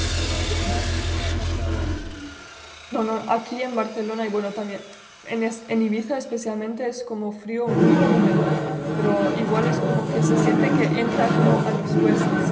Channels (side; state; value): both; identical; correlation 1.00